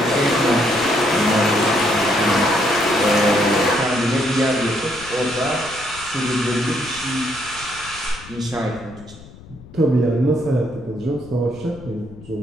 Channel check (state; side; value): noise; left; rumble, 19 dB below the sound